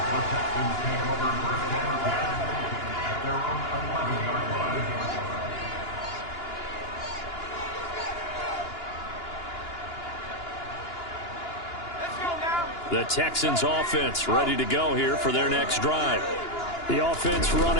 The Texans offense ready to go here for their next drive. The offense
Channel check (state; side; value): late; right; 2.9 ms